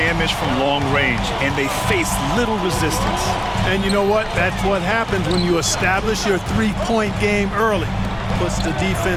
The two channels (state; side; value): identical; both; correlation 1.00